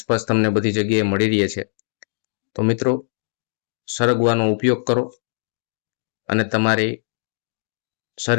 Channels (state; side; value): silent; right; 64 dB below the other